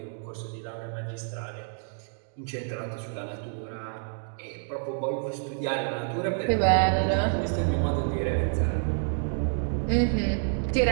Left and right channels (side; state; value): left; silent; digital silence